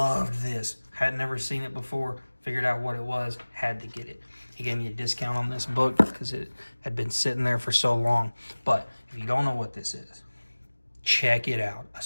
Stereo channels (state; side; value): inverted; both; correlation -1.00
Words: this. Had never seen it before. Figured out what it was. Had to get it. He gave me a discount on this book because it had been sitting there for so long. But if you don't know what this is, check it out.